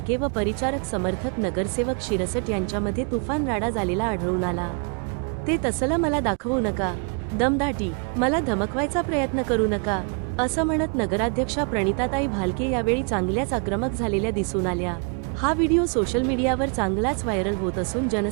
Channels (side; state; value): left; quieter; 38.5 dB